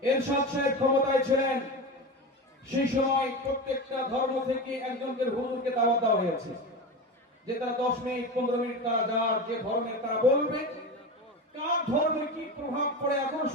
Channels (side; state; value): both; normal; correlation 0.24